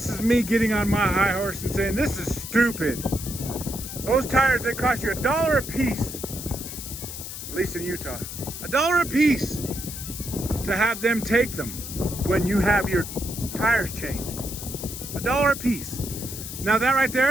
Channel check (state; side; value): noise; left; hiss, 9 dB below the sound